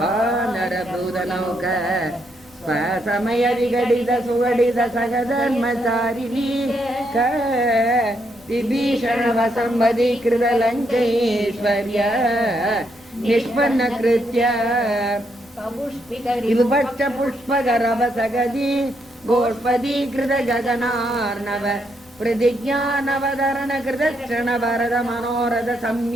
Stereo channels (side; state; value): both; normal; correlation 0.77